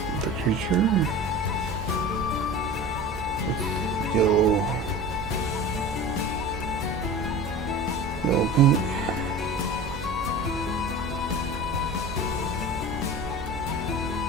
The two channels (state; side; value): normal; both; correlation 0.35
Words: the creature. Get a little yellow paint.